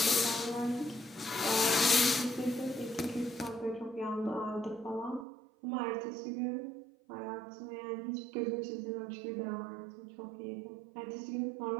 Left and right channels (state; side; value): drops out; left; at 5.2 s